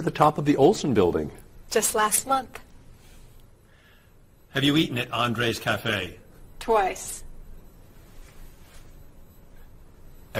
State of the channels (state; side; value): identical; both; correlation 1.00